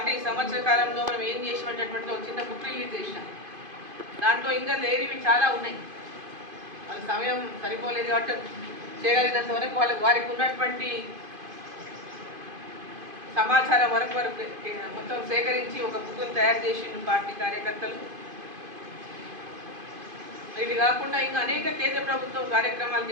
ఈ సంవత్సర కాలంలో మనం ఏం చేసినటువంటి ఒక చిన్న బుక్ రిలీజ్ చేసినాం. దాంట్లో ఇంకా లేనివి చాలా ఉన్నాయి. వాళ్ళ సమయం సరిపోలేదు కాబట్టి చేయగలిగినంత వరకు వారికి ఉన్నటువంటి సమాచారం వరకు మొత్తం సేకరించి ఒక బుక్ను తయారు చేసిండు పార్టీ కార్యకర్తలు. ఇది కాకుండా ఇంకా అనేక కేంద్ర ప్రభుత్వం కార్యక్రమాలు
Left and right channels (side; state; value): left; late; 2.5 ms